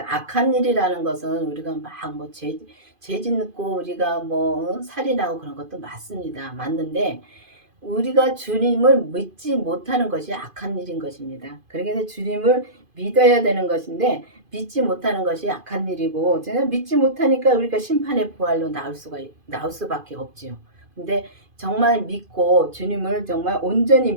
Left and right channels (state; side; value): late; left; 2.5 ms